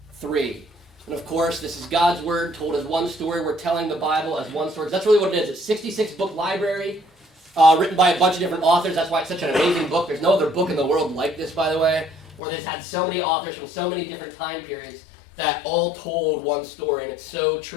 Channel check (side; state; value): right; drops out; at 12.4 s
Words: 3. And of course, this is God's Word told as one story. We're telling the Bible as one story. That's really what it is. It's a 66-book library written by a bunch of different authors. That's why it's such an amazing book. There's no other book in the world like this, by the way, where they've had so many authors from so many different time periods that all told one story, and it's so